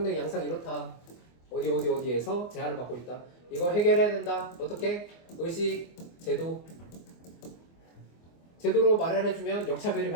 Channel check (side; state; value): right; late; 24 ms